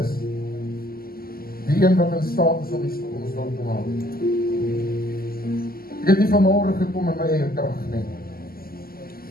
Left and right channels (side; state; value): right; late; 0.43 ms